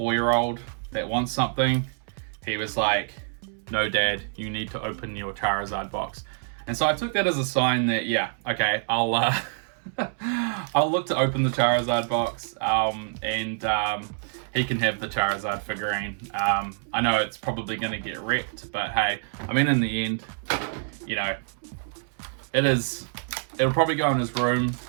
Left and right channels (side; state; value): left; silent; 61 dB below the other